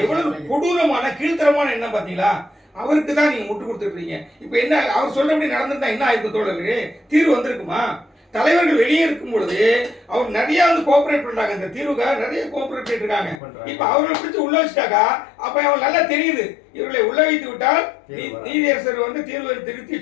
எவ்வளவு கொடூரமான கீழ்த்தரமான எண்ணம் பாத்தீங்களா? அவருக்கு தான் நீங்க முட்டு கொடுத்துருக்கீங்க. இப்ப என்ன அவர் சொல்றபடி நடந்திருந்தா என்ன ஆயிருக்கு தோழர்களே? தீர்வு வந்திருக்குமா? தலைவர்கள் வெளியே இருக்கும் பொழுது அவர் நிறைய வந்து கோஆபரேட் பண்றாங்க, இந்த தீர்வுக்காக நிறைய கோஆபரேட் பண்ணிட்டு இருக்காங்க. இப்ப அவர்களை பிடிச்சு உள்ள வச்சுட்டாக்கா அப்ப அவன் நல்லா தெரியுது, இவர்களை உள்ள வைத்து விட்டால் நீதியரசர் வந்து தீர்வை திருத்தி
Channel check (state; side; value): drops out; right; at 13.4 s